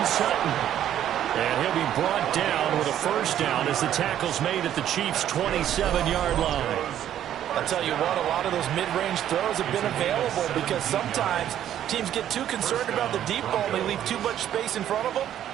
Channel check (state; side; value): quieter; left; 11.0 dB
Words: Sutton. And he'll be brought down with a first down as the tackle's made at the Chiefs' 27-yard line. I'll tell you what, a lot of those mid-range throws have been available because sometimes teams get too concerned about the deep ball and they leave too much space in front of them.